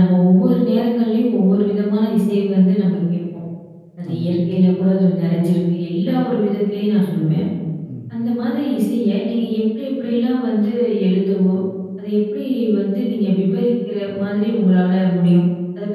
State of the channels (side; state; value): both; identical; correlation 1.00